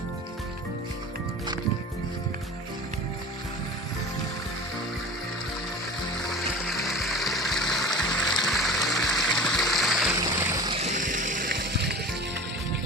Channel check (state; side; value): normal; both; correlation 0.36